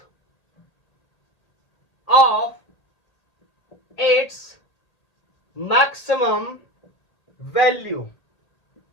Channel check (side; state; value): right; late; 1.8 ms